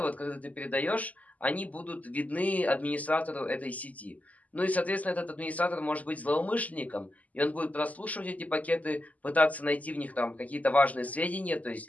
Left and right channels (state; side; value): late; right; 0.075 ms